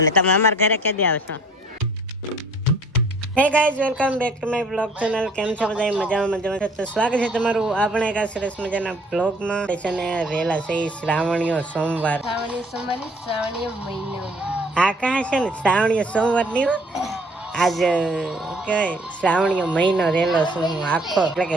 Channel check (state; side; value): normal; both; correlation 0.56